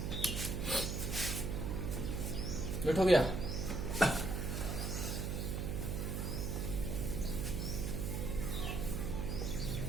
नोट हो गया।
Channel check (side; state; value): right; noise; hum, 1 dB below the sound